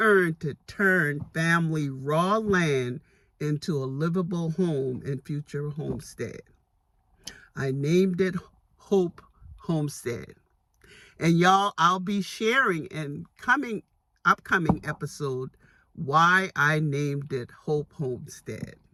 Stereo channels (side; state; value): both; identical; correlation 1.00